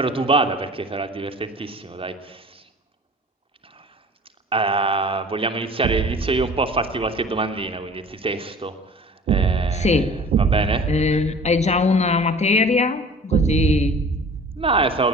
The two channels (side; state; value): both; normal; correlation 0.44